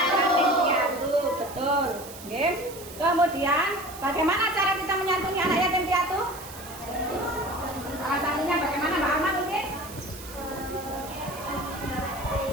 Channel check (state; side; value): noise; right; hiss, 15 dB below the sound